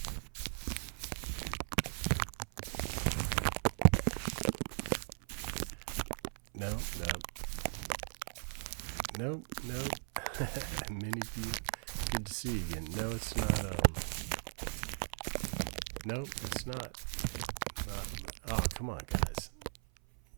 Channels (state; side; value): silent; left; 53 dB below the other